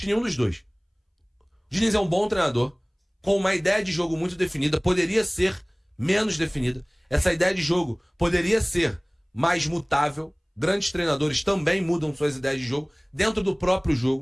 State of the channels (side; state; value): both; identical; correlation 1.00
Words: nenhum dos dois. O Diniz é um bom treinador, com uma ideia de jogo muito definida, poderia ser menos definida. Essa ideia de jogo poderia ser mais mutável. Grandes treinadores também mudam suas ideias de jogo dentro do próprio